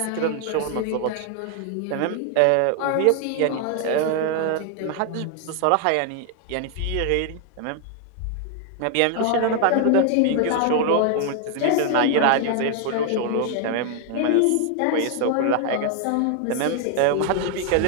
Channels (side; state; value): both; different; correlation 0.00